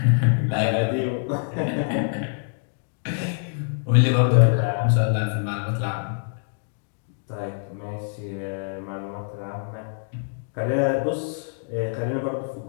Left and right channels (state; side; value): silent; right; digital silence